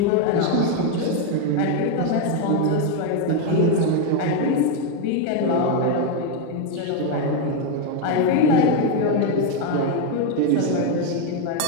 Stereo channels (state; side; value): different; both; correlation 0.02